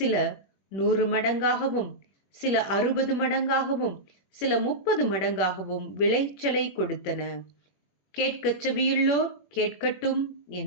100 மடங்காகவும், சில 60 மடங்காகவும், சில 30 மடங்காகவும் விளைச்சலை கொடுத்தன. கேட்கச் செவியுள்ளோர் கேட்கட்டும்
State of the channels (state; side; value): late; right; 21 ms